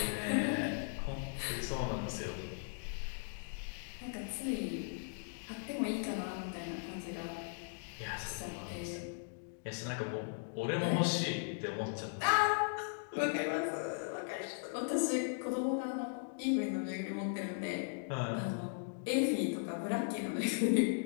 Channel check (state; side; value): silent; right; digital silence